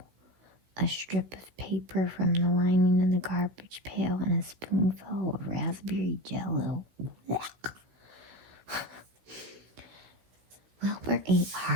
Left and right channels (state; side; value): late; left; 16 ms